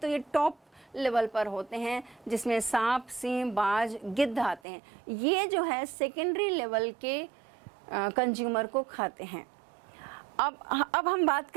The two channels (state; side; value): drops out; left; at 4.6 s